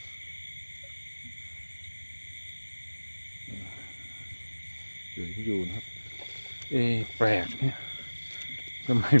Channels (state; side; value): inverted; both; correlation -1.00